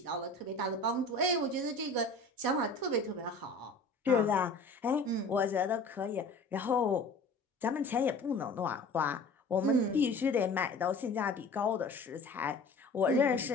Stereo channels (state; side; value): quieter; right; 3.1 dB